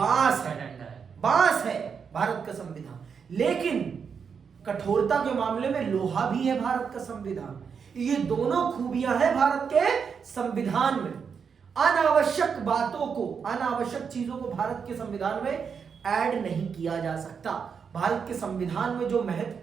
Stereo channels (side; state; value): left; quieter; 6.4 dB